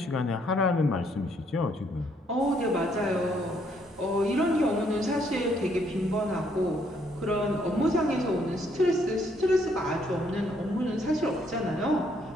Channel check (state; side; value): normal; both; correlation 0.69